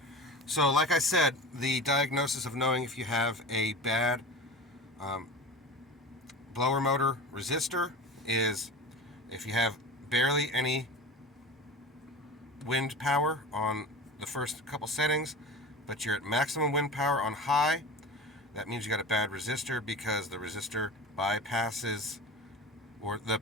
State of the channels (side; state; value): both; normal; correlation 0.32